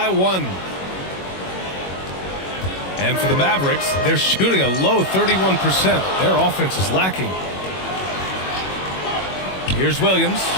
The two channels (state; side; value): late; right; 21 ms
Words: 1. And for the Mavericks, they're shooting a low 31%. Their offense is lacking. Here's Williams.